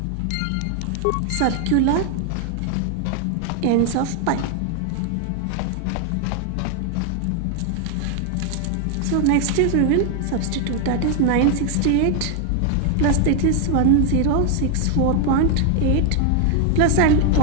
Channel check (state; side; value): different; both; correlation 0.00